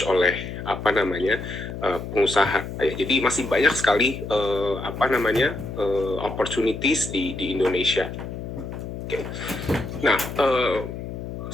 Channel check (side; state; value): left; noise; hum, 8 dB below the sound